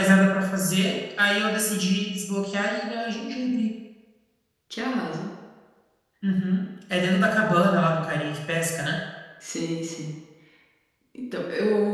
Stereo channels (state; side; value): identical; both; correlation 1.00